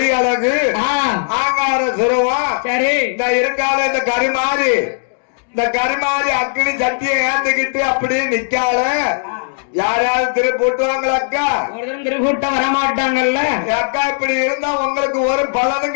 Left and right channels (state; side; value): silent; right; digital silence